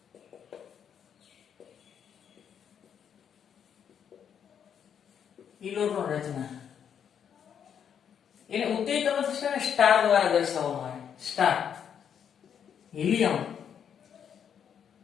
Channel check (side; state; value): right; quieter; 8.2 dB